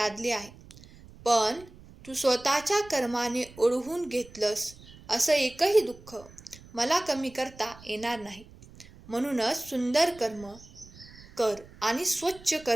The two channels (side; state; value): right; noise; rumble, 21 dB below the sound